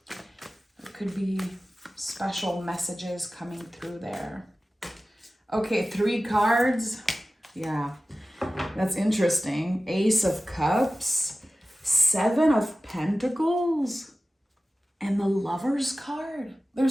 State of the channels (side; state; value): both; normal; correlation 0.96